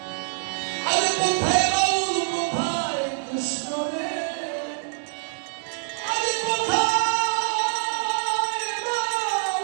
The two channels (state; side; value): silent; left; digital silence